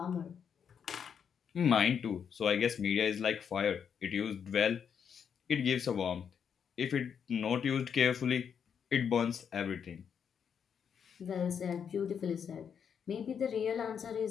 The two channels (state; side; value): quieter; right; 7.4 dB